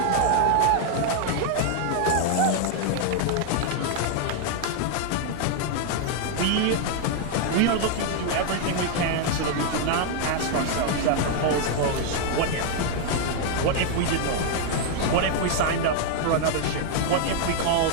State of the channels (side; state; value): both; different; correlation 0.00